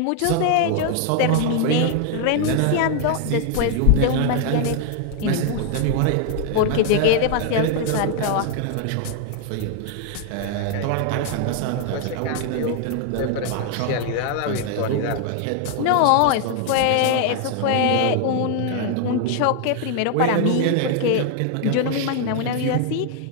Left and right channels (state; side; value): different; both; correlation 0.00